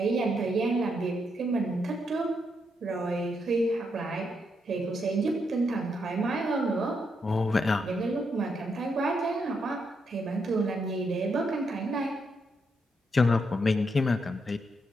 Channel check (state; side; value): normal; both; correlation 0.79